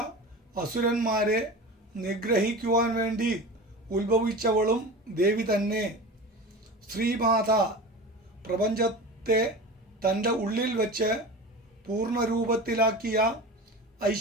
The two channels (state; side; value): normal; both; correlation 0.32